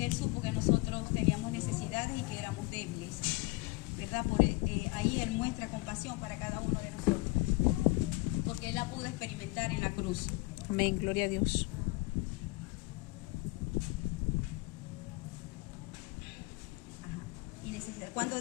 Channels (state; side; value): quieter; right; 23.3 dB